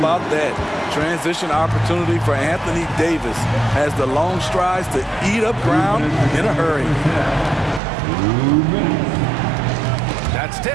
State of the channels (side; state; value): left; drops out; at 7.8 s